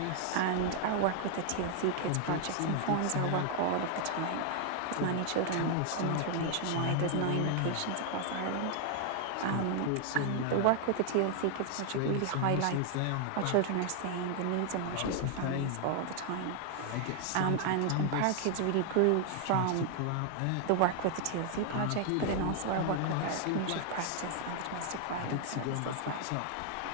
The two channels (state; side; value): different; both; correlation 0.00